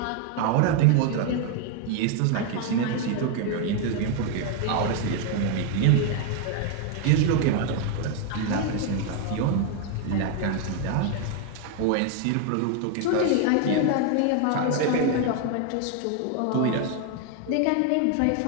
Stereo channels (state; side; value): different; both; correlation 0.01